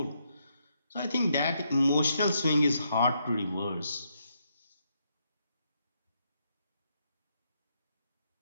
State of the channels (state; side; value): inverted; both; correlation -0.77